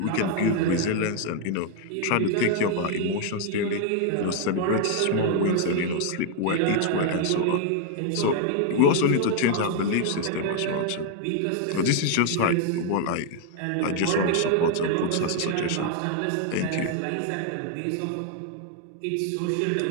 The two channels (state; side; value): different; both; correlation 0.00